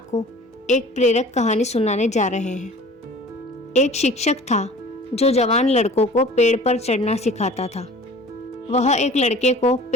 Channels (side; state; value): both; normal; correlation 0.44